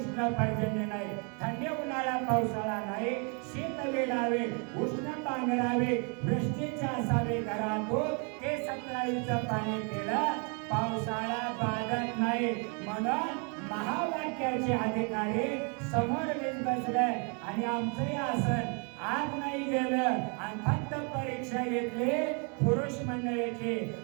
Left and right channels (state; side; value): quieter; left; 36.5 dB